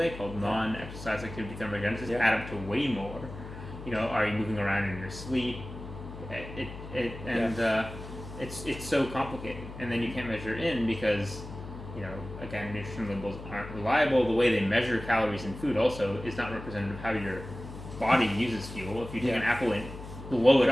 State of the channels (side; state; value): left; noise; hum, 12 dB below the sound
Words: called non-exercise activity thermogenesis add up to way more. Are you moving around in your sleep? It's so complicated, and then you can't measure in because again, nutrition labels aren't reliable. The way they measure calories in food also is not representative of how your body uses fuel. If you take an apple and blow it